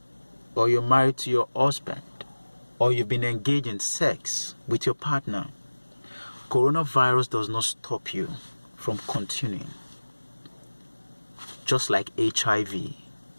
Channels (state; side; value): inverted; both; correlation -1.00